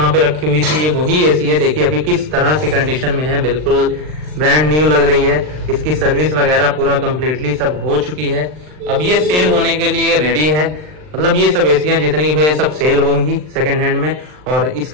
पे रखी हुई थी ये वही एसी है। देखिए अभी किस तरह से कंडीशन में है, बिल्कुल ब्रांड न्यू लग रही है। इसकी सर्विस वगैरह पूरा कंप्लीटली सब हो चुकी है। अब ये सेल होने के लिए रेडी है, मतलब ये सब एसियां जितनी भी है सब सेल होंगी सेकंड हैंड में। और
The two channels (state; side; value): late; left; 39 ms